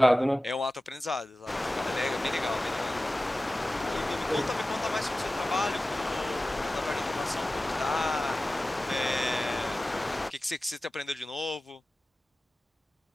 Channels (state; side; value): normal; both; correlation 0.96